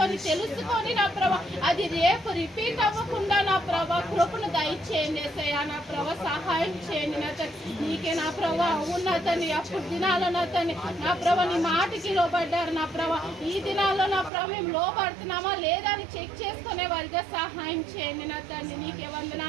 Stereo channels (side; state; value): left; drops out; at 14.3 s